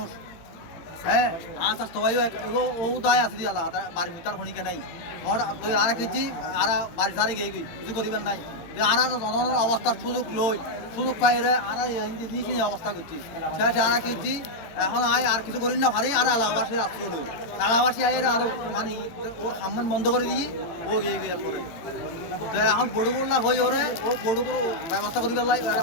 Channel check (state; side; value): late; right; 17 ms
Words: হ্যাঁ আচ্ছা সবাই ও দায় আছে দিয়ে আল্লাহ বাড়ির ভিতর খনিকে নাই তুই আর কিছু আর বাড়ি সারি গিয়ে কিছু করিবেন নাই আর জনগণের অবস্থার সুযোগ পাইরে আর নিয়ে অবস্থা করছি সে আর কিছু এখন আয় আর কিছু করি না ভারি আর এলাকাবাসী আসতে হলো এলাকাবাসী আয় আরো মানে ওর সামনে বন্ধ করে দিয়ে ও গিয়ে গিয়ে পরে এখন বড় করলা হয়ে ওরে ও বড় করে ব্যবস্থা করি পেলাই